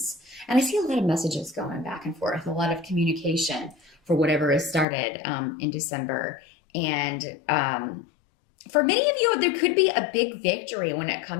And I see a lot of messages going back and forth, a lot of communication for whatever is started in December. And for many of you, there could be a big victory when it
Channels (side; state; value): right; drops out; at 4.9 s